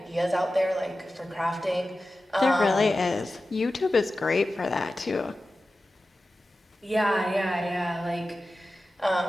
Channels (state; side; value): normal; both; correlation 0.94